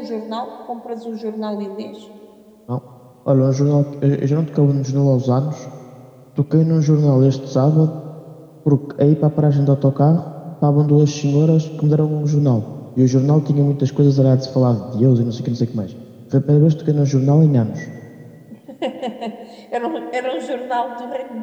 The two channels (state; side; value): identical; both; correlation 1.00